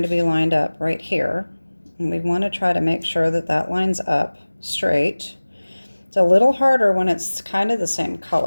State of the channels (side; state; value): both; inverted; correlation -1.00